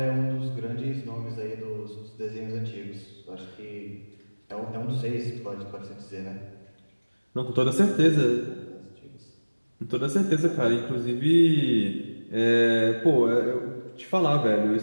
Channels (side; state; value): both; inverted; correlation -1.00